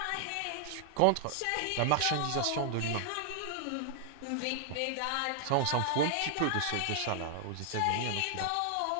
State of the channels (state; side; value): different; both; correlation 0.00